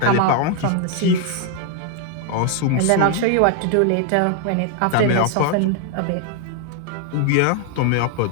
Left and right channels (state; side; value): different; both; correlation 0.00